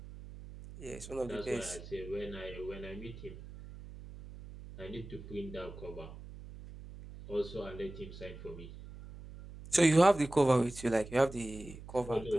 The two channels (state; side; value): noise; right; hum, 14 dB below the sound